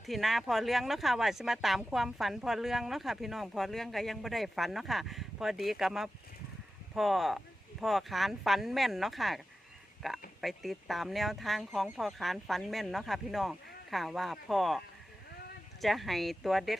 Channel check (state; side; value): normal; both; correlation 0.93